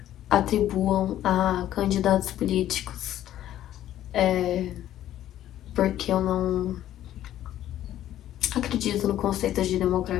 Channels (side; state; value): right; quieter; 12.4 dB